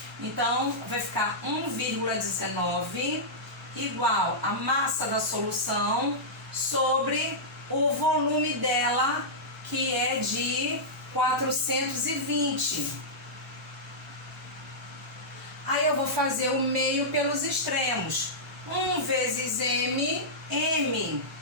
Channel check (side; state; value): both; normal; correlation -0.12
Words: Então, vai ficar 1,19 igual a massa da solução sobre o volume dela, que é de 420. Aí eu vou fazer o meio pelos extremos. 1 vezes m